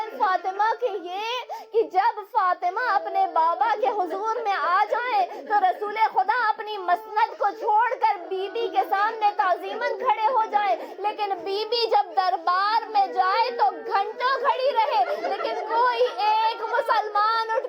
فاطمہ کے یہ کہ جب فاطمہ اپنے بابا کے حضور میں آ جائیں تو رسول خدا اپنی مسند کو چھوڑ کر بی بی کے سامنے تعظیماً کھڑے ہو جائیں، لیکن بی بی جب دربار میں جائے تو گھنٹوں کھڑی رہے، لیکن کوئی ایک مسلمان اٹھ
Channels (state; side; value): identical; both; correlation 1.00